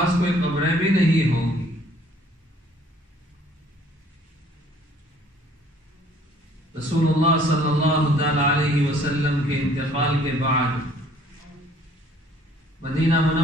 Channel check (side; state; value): both; normal; correlation 0.58